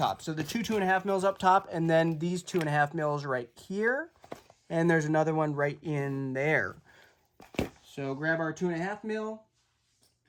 So the 2.5 mils up top, and then these 2.5 mils right here, and there's another one right in there. So grab our 2.5 mil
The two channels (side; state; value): both; identical; correlation 1.00